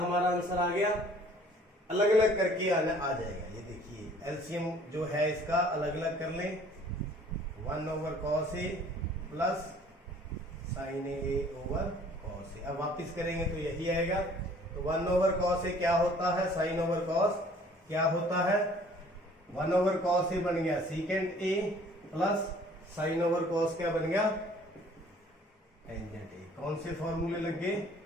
आंसर आ गया, अलग अलग करके आ जाएगा। ये देखिए एलसीएम जो है इसका अलग अलग कर लें, 1 over cos a plus sine A over cos A. अब वापिस करेंगे तो यही आएगा। तो 1 ओवर कॉस ए क्या होता है, साइन ओवर कॉस क्या होता है, 1 ओवर कॉस ए बन गया सीकेंड A plus sine over cos क्या बन गया, टेंजेंट ए। कौन से फॉर्मूले लग गए,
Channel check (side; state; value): both; normal; correlation 0.54